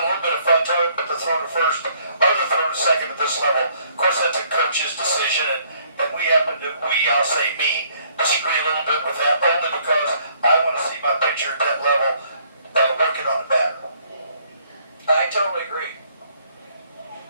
little bit of fun talking about the throw to first or the throw to second at this level. Of course, that's a coach's decision, and I'll say me, disagree a little bit with that, only because I want to see my pitcher at that level working on the batter. I totally agree.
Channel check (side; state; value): both; inverted; correlation -0.64